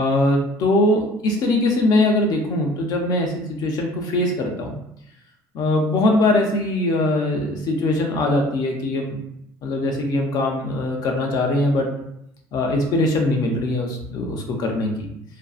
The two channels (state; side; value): normal; both; correlation 0.51